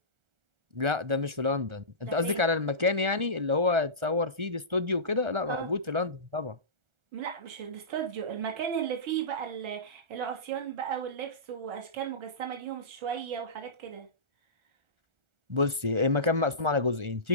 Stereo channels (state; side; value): late; left; 1.4 ms